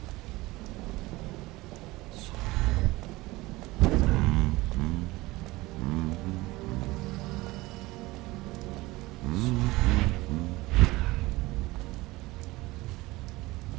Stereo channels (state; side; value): quieter; left; 20.4 dB